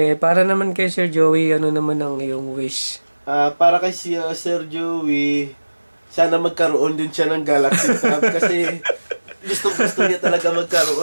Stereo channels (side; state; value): both; inverted; correlation -1.00